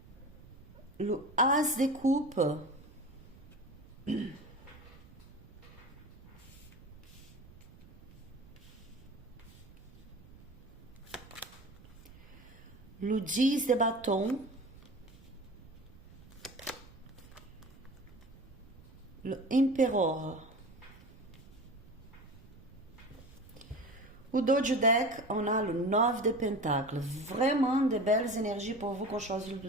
Le As de coupe. Le 10 de bâton. Le Empereur. Au dos du deck, on a le 9 de Pentacles. Vraiment de belles énergies pour vous qu'on choisit le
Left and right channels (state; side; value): noise; right; rumble, 21 dB below the sound